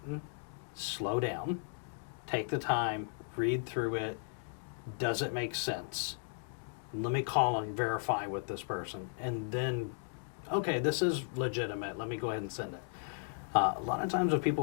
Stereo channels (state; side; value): silent; right; digital silence